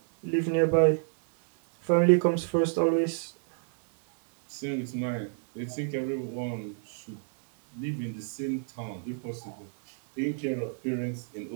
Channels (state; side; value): silent; left; 59 dB below the other